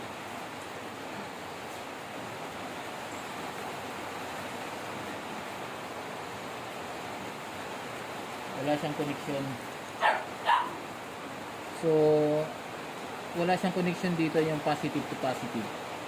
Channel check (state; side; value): identical; both; correlation 1.00